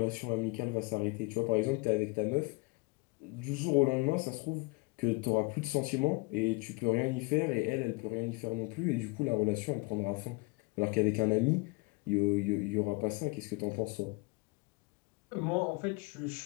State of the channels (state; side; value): quieter; right; 27.3 dB